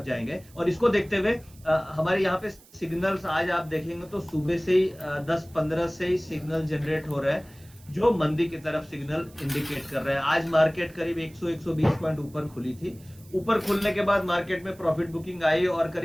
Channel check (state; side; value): noise; right; hiss, 26 dB below the sound